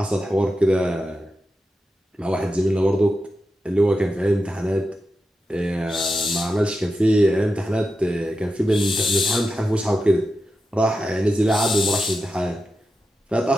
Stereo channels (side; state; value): both; normal; correlation 0.89